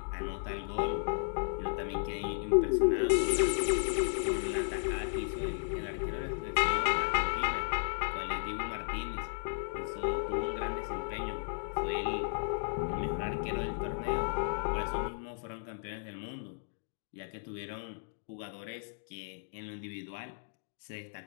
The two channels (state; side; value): silent; right; digital silence